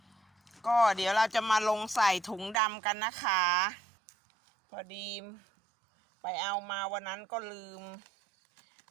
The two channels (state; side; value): drops out; left; at 2.6 s